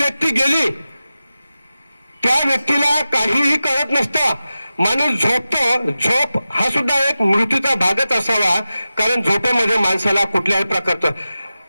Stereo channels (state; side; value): inverted; both; correlation -0.94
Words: गेली, त्या व्यक्तीला काहीही कळत नसतं. माणूस झोपतो. झोप हा सुद्धा एक मृत्यूचा भागच असावा, कारण झोपेमध्ये माणसाला कुठल्याही प्रकारचं